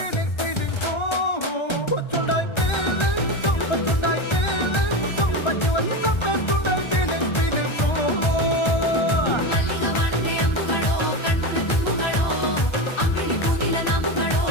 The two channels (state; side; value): late; right; 1.3 ms